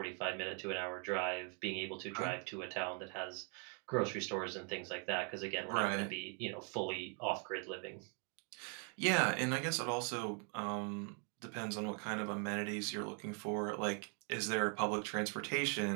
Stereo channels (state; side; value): quieter; left; 38.7 dB